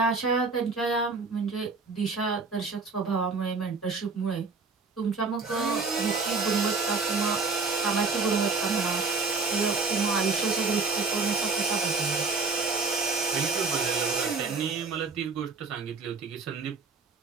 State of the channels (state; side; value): quieter; left; 4.2 dB